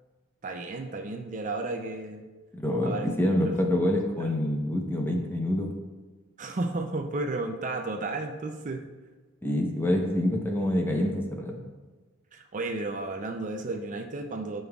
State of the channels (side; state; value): both; normal; correlation 0.68